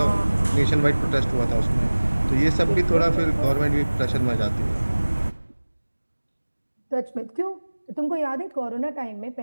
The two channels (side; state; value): both; inverted; correlation -1.00